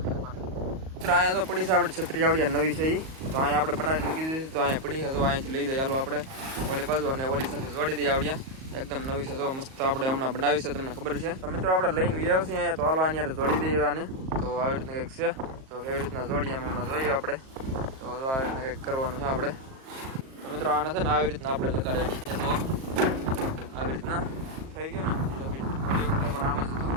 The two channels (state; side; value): late; left; 38 ms